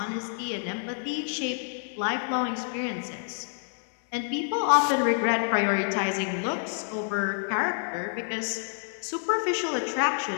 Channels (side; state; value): right; silent; digital silence